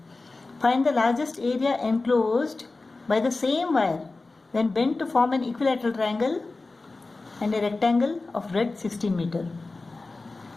Find the largest area enclosed by the same wire when bent to form an equilateral triangle and a rectangle of breadth 16 meter.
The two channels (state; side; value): quieter; right; 3.5 dB